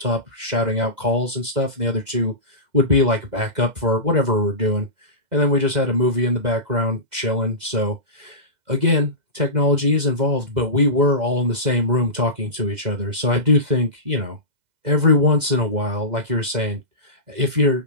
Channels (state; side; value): late; left; 2.0 ms